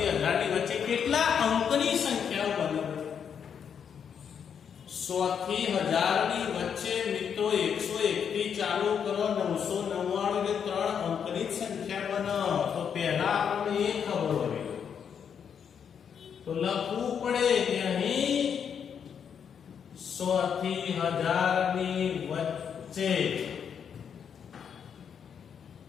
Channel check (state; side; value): quieter; right; 7.6 dB